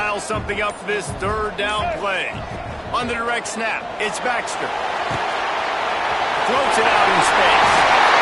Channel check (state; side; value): identical; both; correlation 1.00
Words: something up for this third down play. On the direct snap, it's Baxter. Floats it out in space.